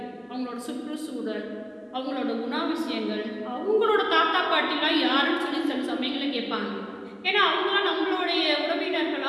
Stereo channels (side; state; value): both; identical; correlation 1.00